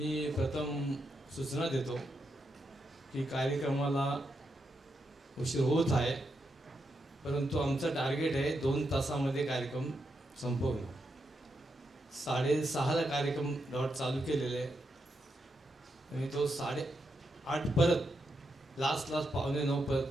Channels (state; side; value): normal; both; correlation 0.83